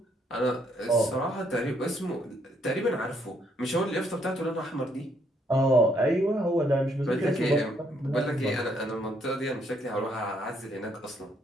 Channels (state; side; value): normal; both; correlation 0.71